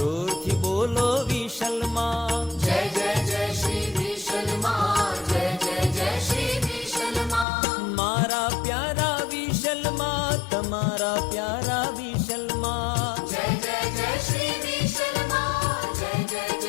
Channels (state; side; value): drops out; right; at 7.5 s